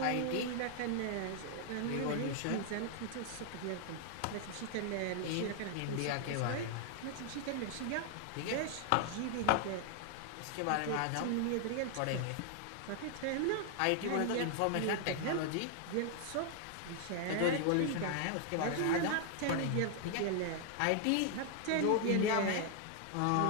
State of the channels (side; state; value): both; different; correlation 0.00